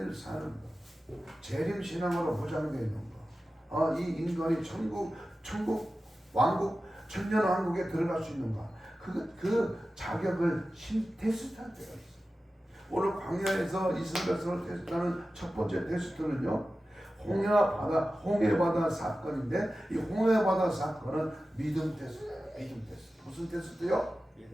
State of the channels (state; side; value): normal; both; correlation 0.94